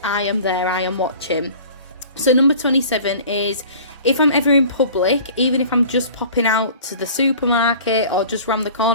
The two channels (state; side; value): inverted; both; correlation -0.45